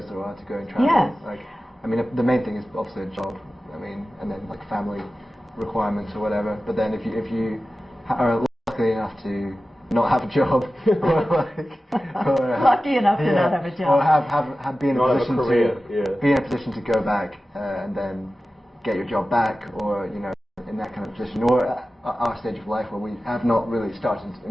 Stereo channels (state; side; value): normal; both; correlation 0.95